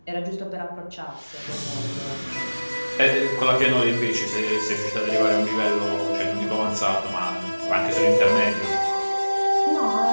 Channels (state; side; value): inverted; both; correlation -1.00